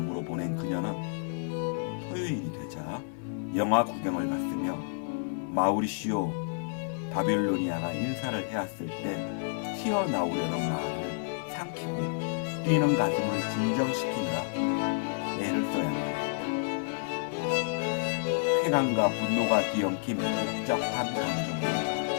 보낸 그녀는 토요일이 되자 영화 구경을 갔으며 마우리시오 바빌로니아가 인사를 해왔을 때 튀어나오려는 말을 삼키고 뛰는 가슴을 진정시키느라 애를 써야만 했다. 쾌감과 분노가 뒤엉킨 복잡한 감정으로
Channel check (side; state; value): right; silent; 58 dB below the other